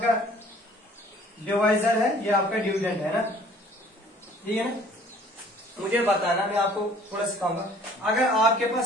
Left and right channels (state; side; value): normal; both; correlation 0.53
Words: डिवाइजर है, ये आपका डिविडेंड है ना, ठीक है ना? मुझे बताना, मैं आपको थोड़ा सिखाऊंगा। अगर आपके